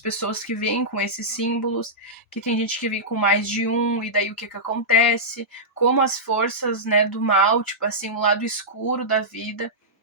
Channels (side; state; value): both; normal; correlation -0.13